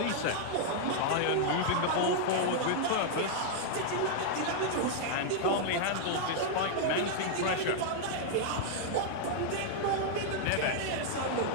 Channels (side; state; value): both; different; correlation -0.01